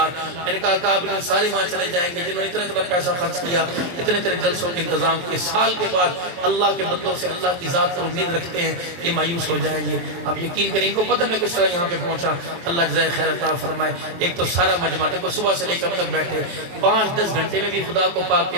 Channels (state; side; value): late; left; 23 ms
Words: میں نے کہا کہ آپ انہیں سارے وہاں چلے جائیں گے جنہوں نے اتنا پیسہ خرچ کیا، اتنے جلسوں کے انتظام کیے، سال کے بعد اللہ کے بندوں سے اللہ کی ذات پر امید رکھتے ہیں یہ مایوس ہو جائیں گے۔ آپ یقین کریں، ان کو پتہ میں کس طرح یہاں پہ پہنچا، اللہ جزائے خیر عطا فرمائے۔ ایک تو سارا مجمع دیکھو صبح سے لے کر تک بیٹھے 5-10 گھنٹے میں بھی خدا کو پاک کے